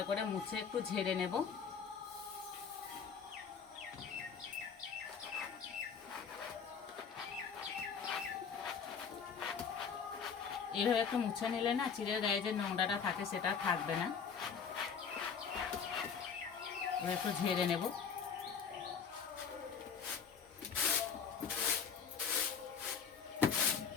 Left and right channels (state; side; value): quieter; right; 6.5 dB